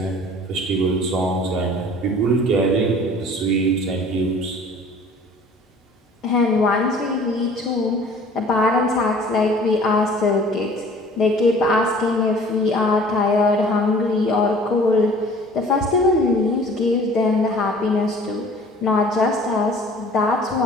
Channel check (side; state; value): both; normal; correlation 0.49